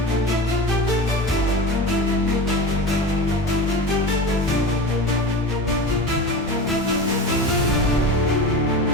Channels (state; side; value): normal; both; correlation 0.30